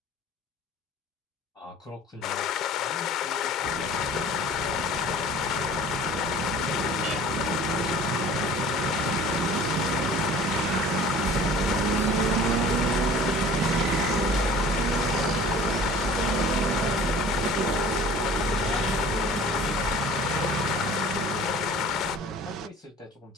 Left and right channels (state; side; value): normal; both; correlation 0.46